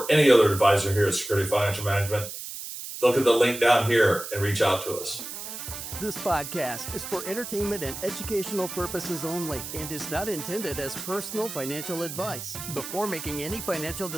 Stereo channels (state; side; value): noise; right; hiss, 9 dB below the sound